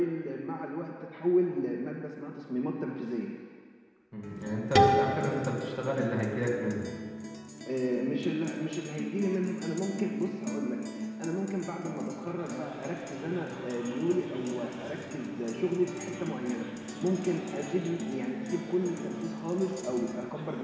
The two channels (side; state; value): both; identical; correlation 1.00